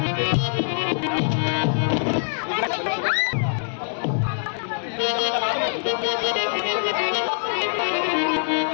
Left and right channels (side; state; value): right; silent; 63 dB below the other